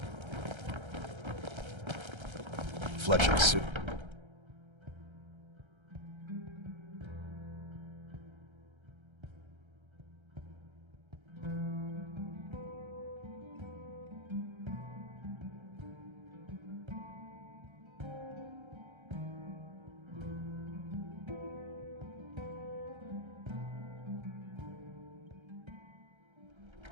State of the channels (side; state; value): left; late; 1.3 ms